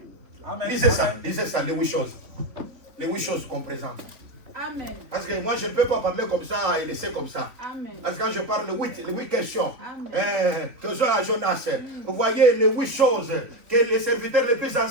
Lisez ça, les 8 choses. Les 8 choses qu'on présente. Amen. Parce que moi, je ne peux pas parler comme ça et laisser comme ça. Amen. Parce que quand je parle de les 8 questions, Amen. que soit à Jonas, vous voyez les 8 choses que les serviteurs les plus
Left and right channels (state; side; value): late; left; 3.5 ms